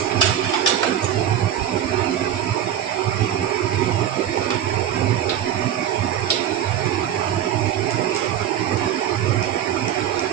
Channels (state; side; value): quieter; left; 10.3 dB